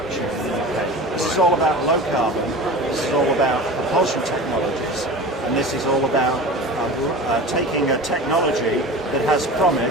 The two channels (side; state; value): both; normal; correlation 0.34